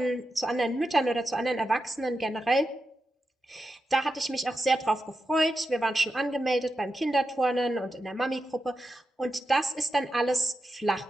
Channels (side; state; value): both; normal; correlation 0.88